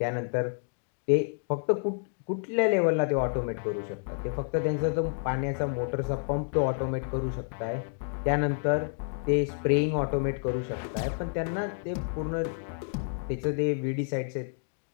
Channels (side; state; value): right; silent; digital silence